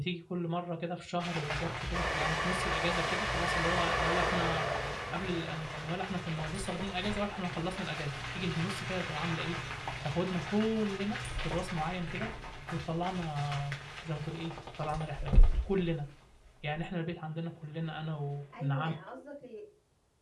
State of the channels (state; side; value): identical; both; correlation 1.00